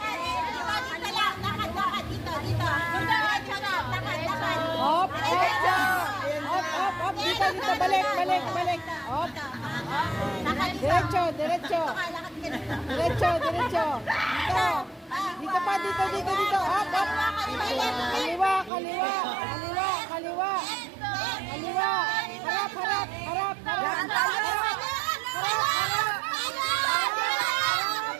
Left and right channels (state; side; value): drops out; left; at 18.7 s